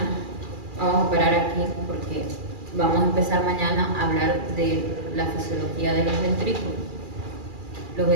vamos a parar aquí porque vamos a empezar mañana a hablar de la fisiología de los ventrículos. Los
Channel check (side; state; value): left; late; 2.4 ms